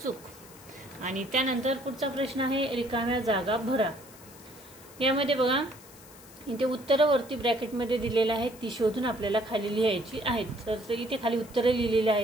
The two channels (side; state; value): left; noise; hiss, 21 dB below the sound